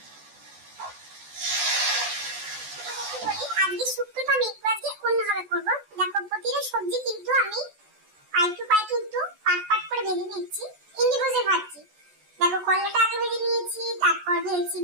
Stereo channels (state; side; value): late; left; 14 ms